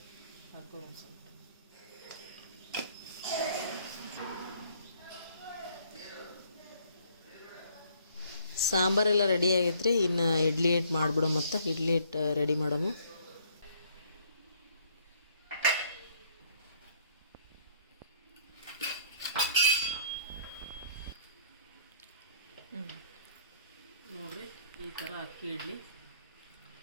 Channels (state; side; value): inverted; both; correlation -0.63